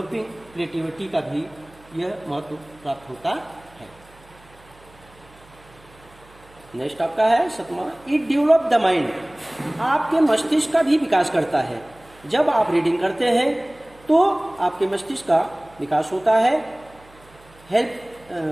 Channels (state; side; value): noise; right; hum, 26 dB below the sound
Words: क्रिएटिविटी का भी यह महत्व प्राप्त होता है। नेक्स्ट आपका है सतमा, इट डेवलप द माइंड। आपके मस्तिष्क का भी विकास करता है। जब आप रीडिंग करते हैं तो आपके मस्तिष्क का विकास होता है।